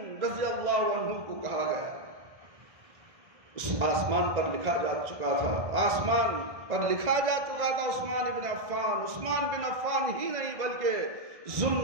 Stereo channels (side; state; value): left; late; 1.6 ms